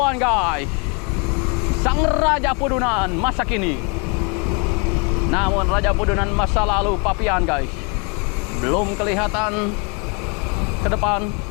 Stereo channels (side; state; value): right; quieter; 33.2 dB